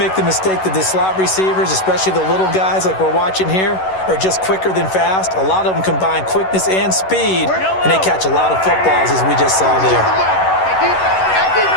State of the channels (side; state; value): right; late; 11 ms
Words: the mistake that the slot receivers, especially the little guys like we're watching here, are just quicker than fast. A lot of them combine quickness and speed, and they catch a lot of footballs, as we just saw there.